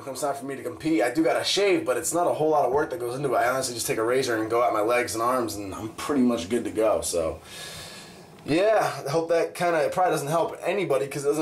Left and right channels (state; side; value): identical; both; correlation 1.00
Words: it comes time for me to compete, I do gotta shave, but it's not a whole lot of work that goes into it. I honestly just take a razor and go at my legs and arms, and I'm pretty much good to go. So, yeah, I hope that it probably doesn't help anybody because it